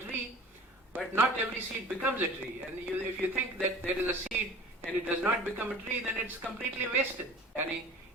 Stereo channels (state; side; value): normal; both; correlation 0.43